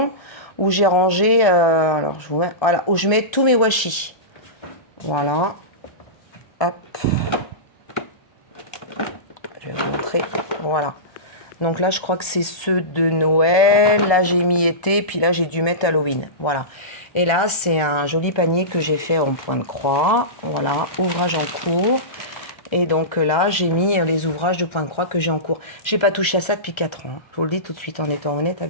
où j'ai rangé, alors je vous mets, voilà, où je mets tous mes washi. Voilà. Hop. Je vais vous montrer. Voilà. Donc là, je crois que c'est ceux de Noël. Là, j'ai mis été, puis là, j'ai dû mettre Halloween. Voilà. Et là, c'est un joli panier que j'ai fait en point de croix. Voilà, ouvrage en cours. Et donc là, j'ai mis les ouvrages de point de croix que j'ai en cours. J'ai pas touché à ça depuis 4 ans. Je vous le dis tout de suite en étant honnête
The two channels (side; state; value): right; late; 1.3 ms